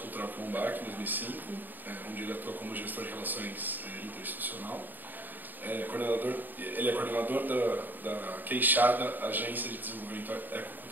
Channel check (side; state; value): left; late; 0.089 ms